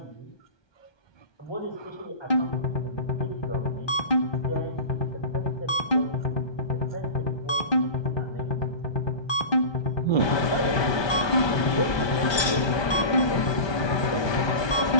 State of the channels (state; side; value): late; right; 1.2 ms